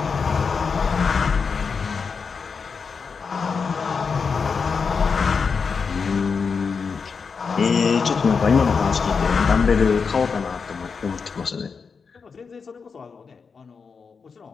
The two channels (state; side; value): quieter; right; 5.4 dB